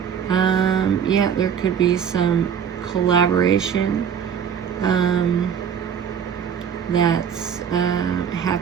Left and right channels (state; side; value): quieter; left; 7.9 dB